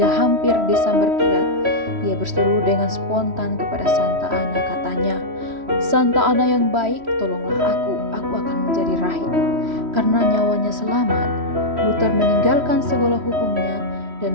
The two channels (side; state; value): left; late; 3.1 ms